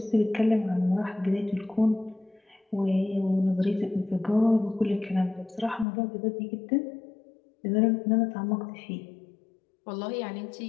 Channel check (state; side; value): drops out; right; at 5.9 s